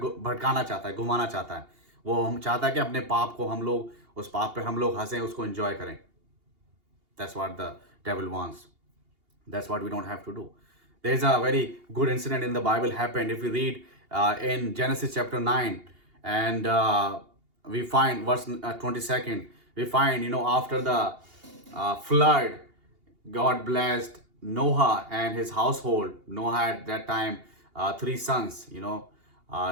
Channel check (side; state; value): left; late; 2.8 ms